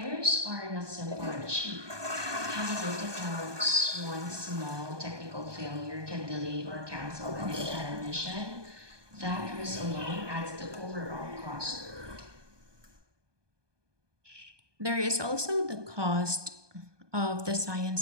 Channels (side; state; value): left; late; 1.2 ms